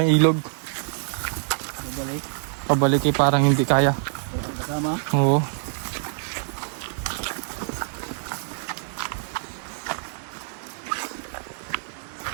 ilog. Babalik. Pabalik eh, parang hindi kaya. Kasama. Oo.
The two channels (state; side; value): silent; left; digital silence